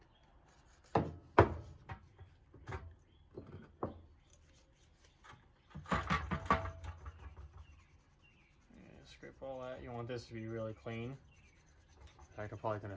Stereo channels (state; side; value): identical; both; correlation 1.00